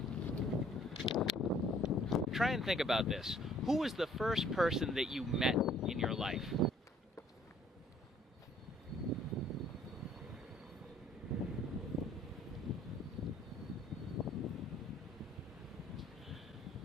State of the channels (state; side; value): normal; both; correlation 0.59